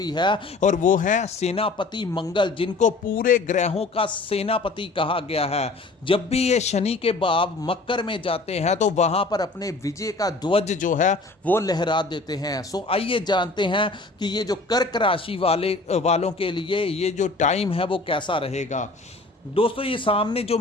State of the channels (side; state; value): right; quieter; 3.3 dB